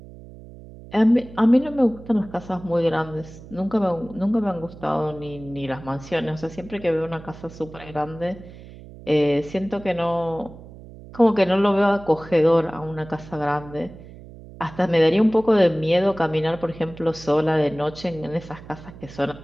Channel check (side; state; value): right; noise; hum, 17 dB below the sound